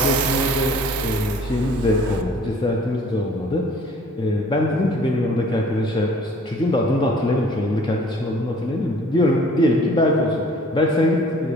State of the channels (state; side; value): normal; both; correlation 0.52